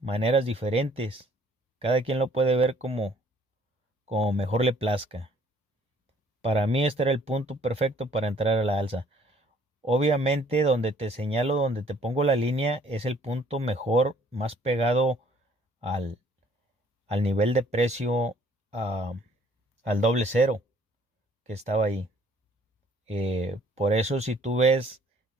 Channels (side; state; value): both; normal; correlation 0.60